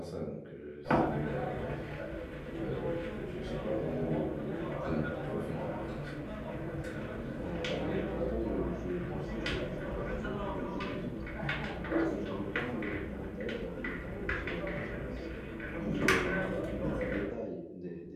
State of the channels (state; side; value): identical; both; correlation 1.00